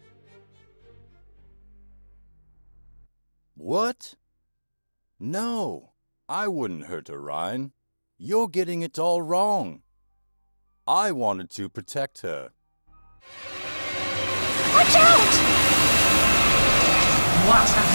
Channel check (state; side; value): inverted; both; correlation -1.00